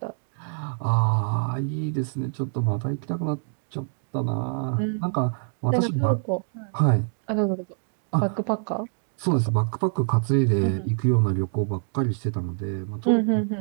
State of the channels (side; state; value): left; silent; digital silence